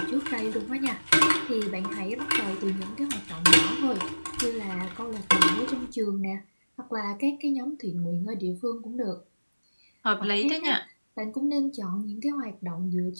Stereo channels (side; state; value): both; inverted; correlation -1.00